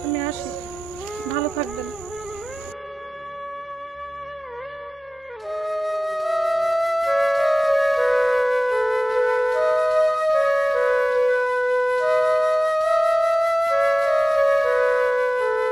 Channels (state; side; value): normal; both; correlation 0.97